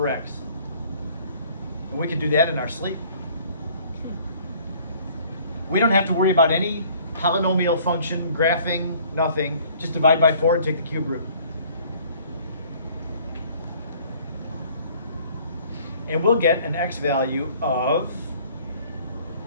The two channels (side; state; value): both; inverted; correlation -0.55